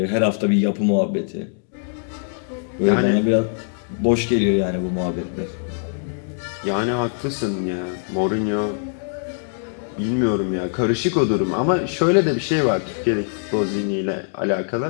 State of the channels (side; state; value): right; silent; digital silence